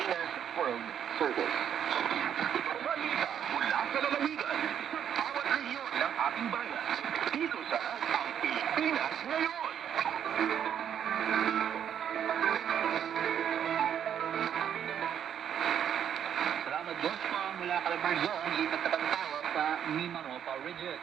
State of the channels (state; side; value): quieter; left; 9.1 dB